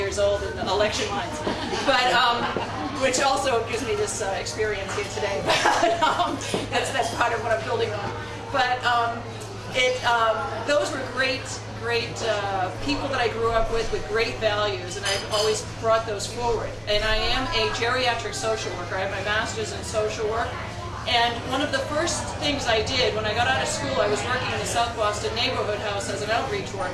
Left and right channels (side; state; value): both; identical; correlation 1.00